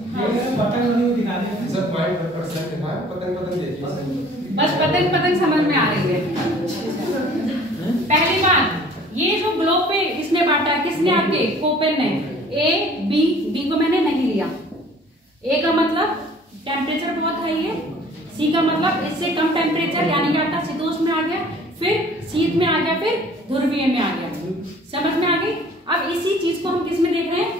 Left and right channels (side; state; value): both; normal; correlation 0.51